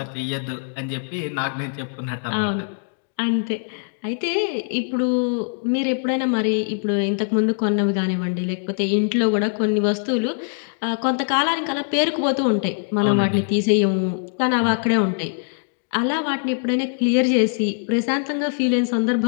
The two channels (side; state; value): right; silent; digital silence